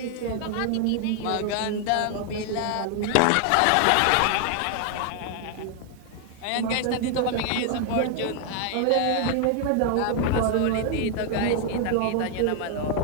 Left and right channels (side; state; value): both; different; correlation 0.00